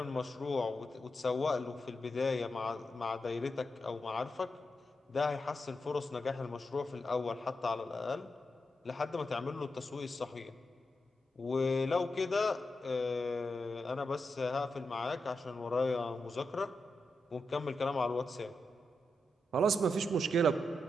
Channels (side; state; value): both; normal; correlation 0.87